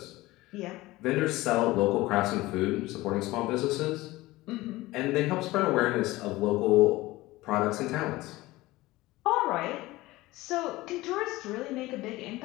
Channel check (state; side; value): quieter; right; 19.0 dB